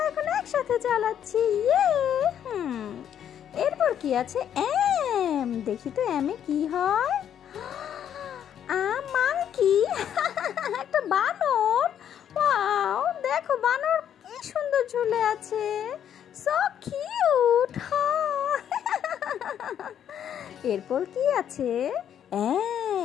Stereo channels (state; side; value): quieter; right; 9.5 dB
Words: এখন একসাথে চালাচ্ছি। এরপর কি আছে। দেখি তো এমে কি হয়। মাংকি। একটা বানর। ওয়াও, দেখো বানর কি সুন্দর ঝুলে আছে। So cute. এরপর কি আছে।